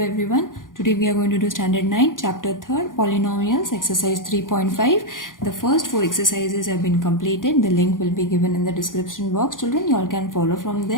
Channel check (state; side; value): late; right; 0.89 ms